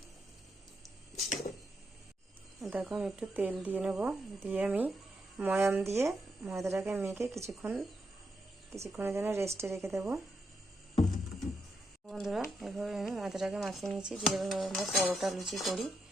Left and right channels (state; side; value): normal; both; correlation 0.82